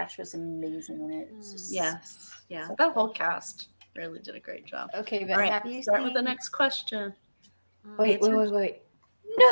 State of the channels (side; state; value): both; inverted; correlation -1.00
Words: was amazing in it. It's just, Yes. Yeah. That whole cast really did a great job. Okay, but All right. have you Start seen? with the next question. Wait.